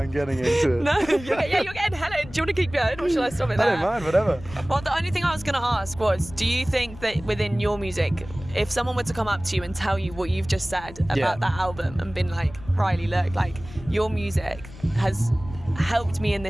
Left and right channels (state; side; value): noise; left; rumble, 16 dB below the sound